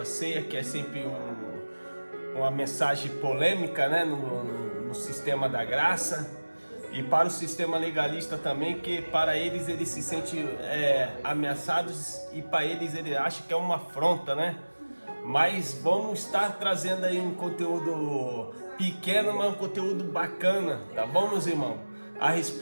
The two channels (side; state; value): both; inverted; correlation -1.00